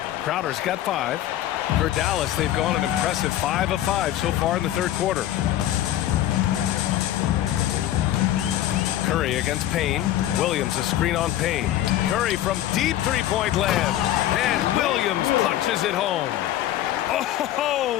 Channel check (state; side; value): quieter; right; 12.9 dB